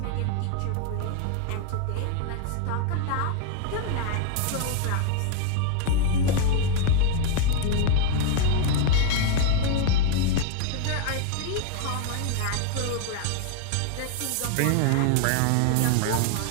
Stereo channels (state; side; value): different; both; correlation 0.00